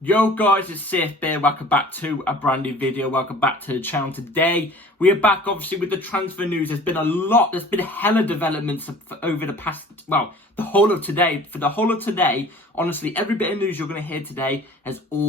Yo guys, it's Safe here. Welcome back to a brand new video. Welcome back to the channel. Today we are back obviously with the transfer news. There's been a hella developments over the past, well, the whole of today. For the whole of today, honestly, every bit of news you're going to hear today has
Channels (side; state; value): both; normal; correlation 0.47